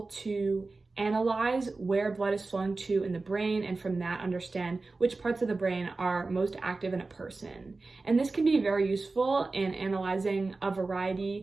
to analyze where blood is flowing to in the brain, and from that understand which parts of the brain are most active in a person. And this can be very useful in analyzing a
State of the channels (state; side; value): quieter; left; 3.6 dB